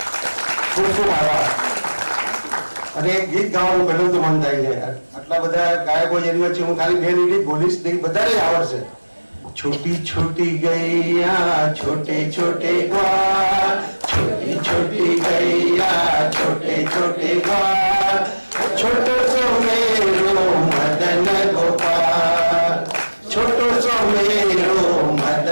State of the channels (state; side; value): inverted; both; correlation -1.00